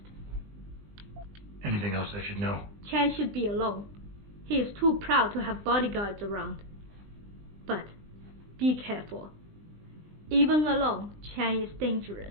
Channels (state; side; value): late; left; 20 ms